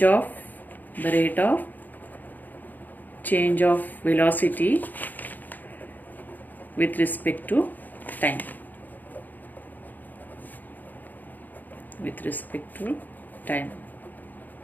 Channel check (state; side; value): late; right; 0.085 ms